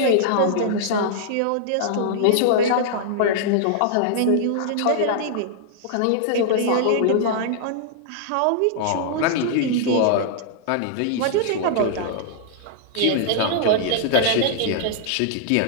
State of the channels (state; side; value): different; both; correlation -0.01